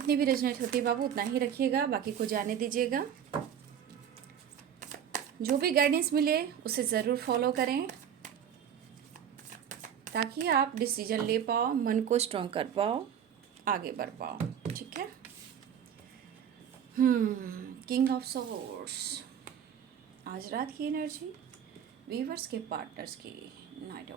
भी रेजोनेट होती है बाबू उतना ही रखिएगा, बाकी को जाने दीजिएगा। जो भी गाइडेंस मिले उसे ज़रूर फॉलो करें ताकि आप डिसीजन ले पाओ, मन को स्ट्रॉन्ग कर पाओ, आगे बढ़ पाओ। ठीक है। किंग ऑफ सोर्ड्स, आज रात की एनर्जी वीवर्स के पार्टनर्स की। Night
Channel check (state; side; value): quieter; left; 8.8 dB